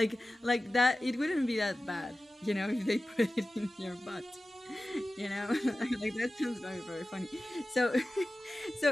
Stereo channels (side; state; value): both; normal; correlation 0.95